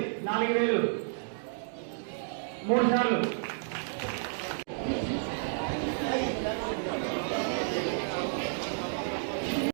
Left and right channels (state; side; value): silent; left; digital silence